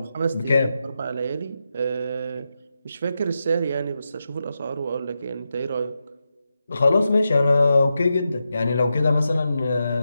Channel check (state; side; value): inverted; both; correlation -0.88